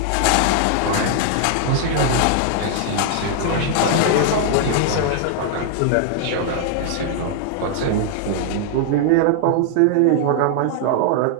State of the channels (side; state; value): both; different; correlation 0.00